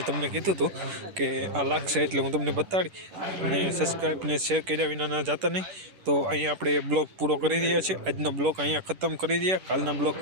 તમને કીધું હતું કે આ લાગશે એટલે હું તમને બતાડી અને સબસ્ક્રાઈબ ને શેર કર્યા વિના ના જતા નહીં તો અહીંયા આપણે બ્લોગ પૂરો કરી રહ્યા છીએ આજનો બ્લોગ અહીંયા ખતમ કરી રહ્યા કાલના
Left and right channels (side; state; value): left; late; 10 ms